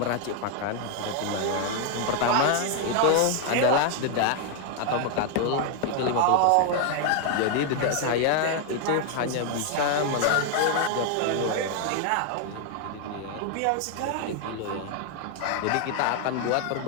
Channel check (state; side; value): different; both; correlation 0.00